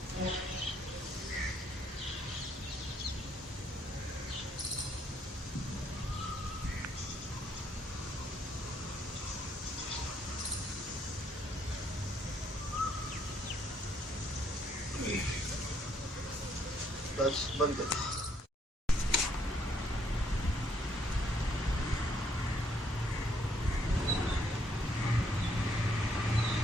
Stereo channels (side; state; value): both; normal; correlation 0.70